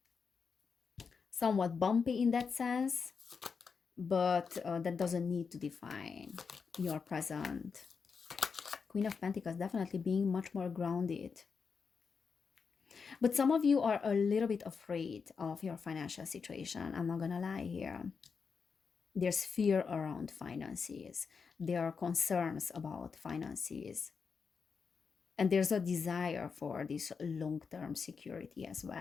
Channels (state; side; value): quieter; right; 5.6 dB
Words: somewhat bumpy in that sense, but that doesn't need to define your present. Queen of Pentacles definitely being much more grounded. But some of you are a little bit afraid of your financial situation. I'm not gonna lie here. There's fear around finances. There are concerns about finances. And there's a desire for this long-term security as